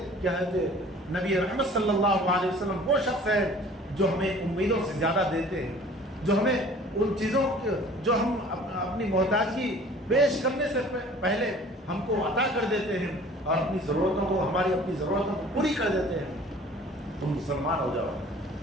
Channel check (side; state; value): both; normal; correlation 0.48